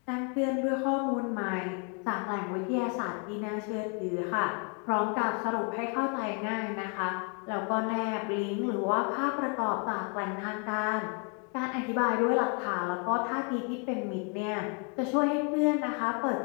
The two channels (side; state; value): right; quieter; 36.8 dB